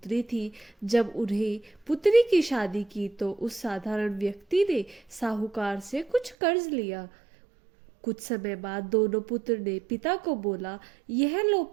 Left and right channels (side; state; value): left; drops out; at 6.4 s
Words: थी। जब उन्हें पुत्री की शादी की तो उस साधारण व्यक्ति ने साहूकार से कुछ कर्ज लिया। कुछ समय बाद दोनों पुत्र ने पिता को बोला, यह लो